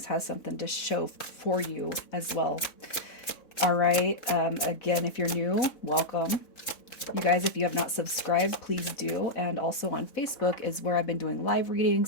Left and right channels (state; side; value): late; right; 4.1 ms